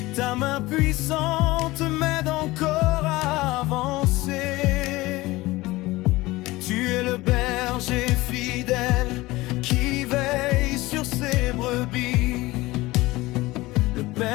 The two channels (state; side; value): quieter; right; 19.8 dB